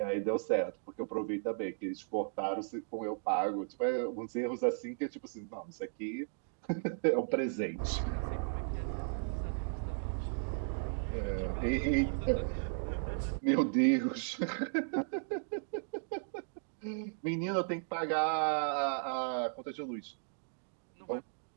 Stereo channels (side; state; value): left; silent; digital silence